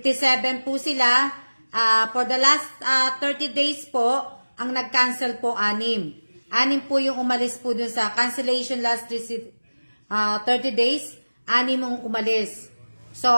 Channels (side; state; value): both; inverted; correlation -1.00